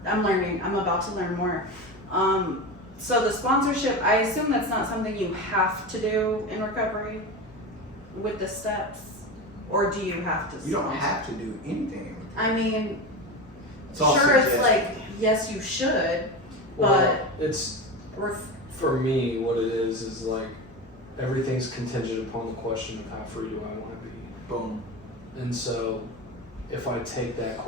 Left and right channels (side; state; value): both; normal; correlation 0.23